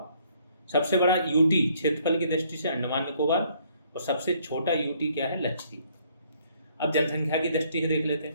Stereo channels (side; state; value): both; inverted; correlation -0.64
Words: सबसे बड़ा यूटी क्षेत्रफल की दृष्टि से अंडमान निकोबार, और सबसे छोटा यूटी क्या है लक्षद्वीप। अब जनसंख्या की दृष्टि से देख लेते